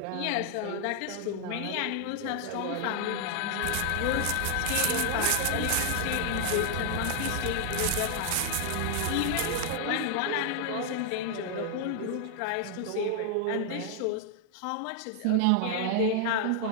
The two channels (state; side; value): different; both; correlation 0.00